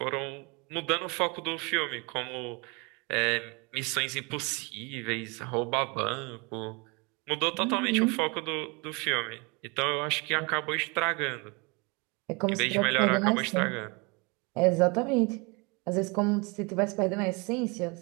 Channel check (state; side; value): quieter; left; 29.4 dB